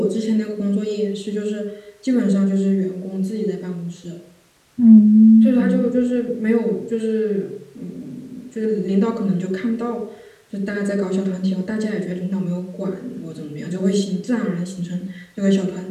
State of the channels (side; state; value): both; identical; correlation 1.00